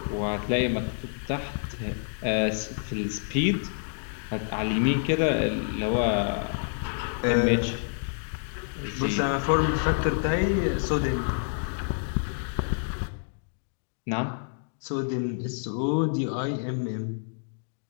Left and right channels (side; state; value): right; silent; digital silence